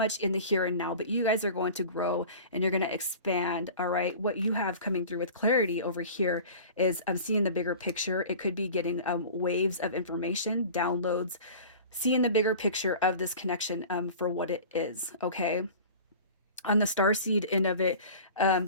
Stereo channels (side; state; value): both; inverted; correlation -0.39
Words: in the here and now, but you guys are going to grow and you're going to expand. All right. What you have coming through with clarity over here is I'm seeing the bigger picture. It could be getting waves of information, downloads, seeing the bigger picture of this connection for what it is. Okay. On the star seed end of it,